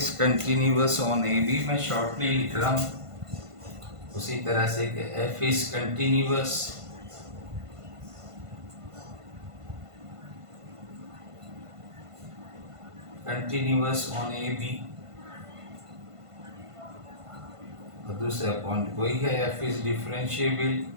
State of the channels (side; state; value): left; late; 1.5 ms